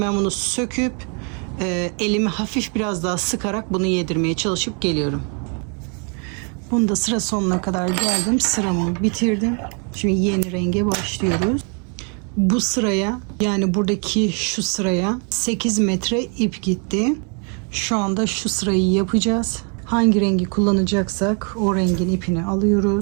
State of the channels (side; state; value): left; quieter; 38.5 dB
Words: ben bunu söküp elimi hafif biraz daha sıkarak bunu yedirmeye çalışıp geliyorum. Bunu da sıra sonuna kadar geldim. Sıramı bitirdim. Şimdi yeni renge başlıyoruz. Bu sıraya, yani buradaki şu sıraya 8 metre ip gitti. Şu anda şu sırayı yapacağız. Hangi rengi kullanacaksak o rengin ipini